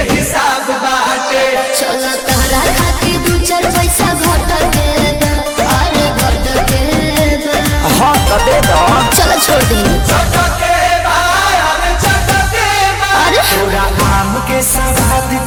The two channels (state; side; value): identical; both; correlation 1.00